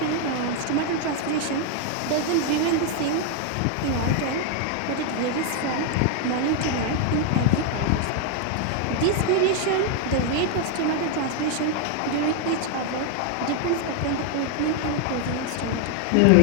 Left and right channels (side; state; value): both; different; correlation 0.00